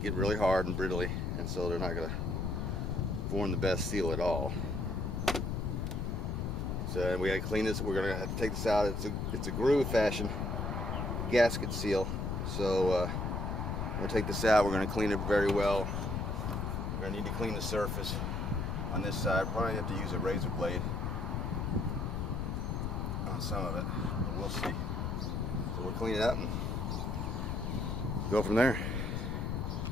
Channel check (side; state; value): left; noise; rumble, 1 dB below the sound